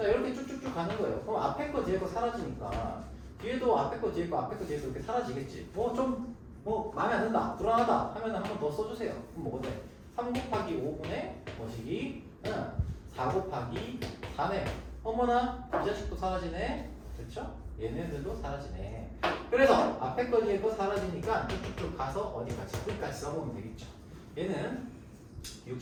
이렇게 쭉쭉쭉 가는 거예요. 그럼 앞에 거 뒤에 거 사라지니까 뒤에도 앞에 거 뒤에 거 앞에 거 뒤에 거 이렇게 사라지겠지. 마음에 안 든다, 불안하다 하면 한 번 더 써주세요. 그럼 뭐가 돼? 3 곱하기 5분의 뭐시기? 4 곱하기 4네. 어머나, 이 자식도 사라지네. 그렇죠? 얘네들도 사라지네. 그래서 앞에 거 뒤에 거 사라지니까 쭉쭉쭉 가서 어디까지? 끝까지 써보면 되겠죠. 얘는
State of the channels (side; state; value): both; identical; correlation 1.00